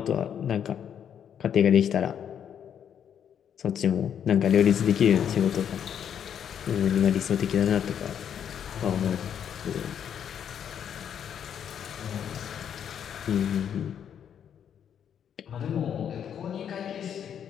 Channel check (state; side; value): quieter; right; 8.7 dB